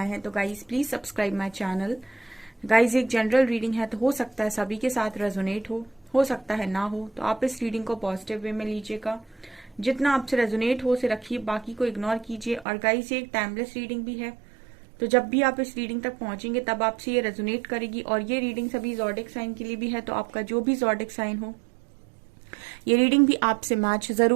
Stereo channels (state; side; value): drops out; left; at 12.7 s